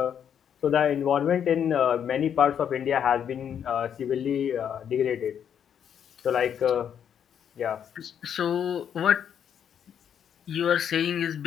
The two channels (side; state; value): right; quieter; 8.6 dB